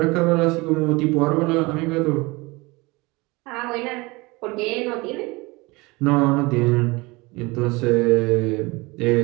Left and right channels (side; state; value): left; quieter; 24.1 dB